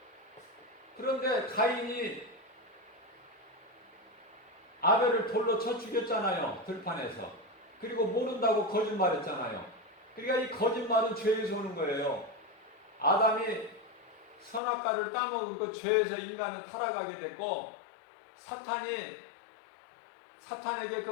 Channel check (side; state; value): right; drops out; at 14.6 s